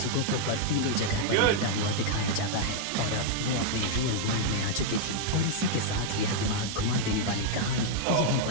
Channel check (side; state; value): both; different; correlation -0.01